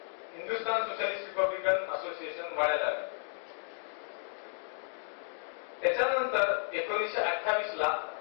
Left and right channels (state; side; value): silent; right; 56 dB below the other